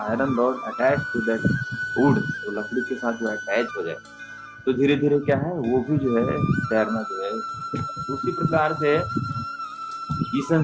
rod attach to that wood, तो लकड़ी के साथ जो अटैच हो जाए, तो धीरे धीरे क्या है, वो भी जो है तैरना जो है। उसी प्रकार से इस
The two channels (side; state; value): both; identical; correlation 1.00